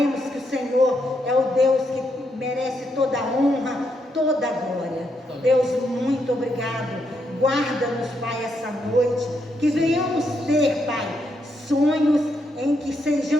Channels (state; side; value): normal; both; correlation 0.79